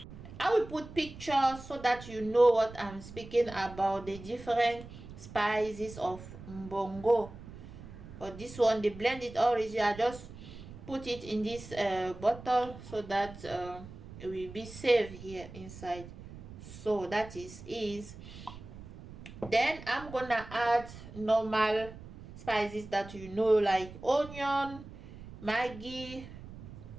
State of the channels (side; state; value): right; noise; rumble, 15 dB below the sound